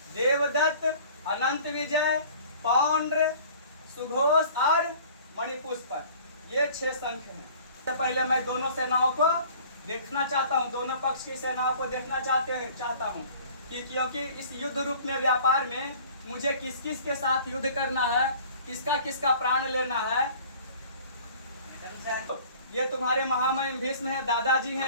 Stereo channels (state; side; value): inverted; both; correlation -0.48